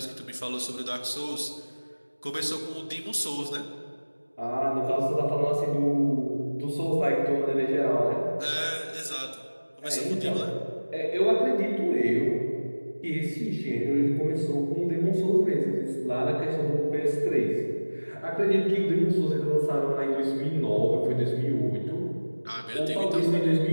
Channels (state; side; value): inverted; both; correlation -1.00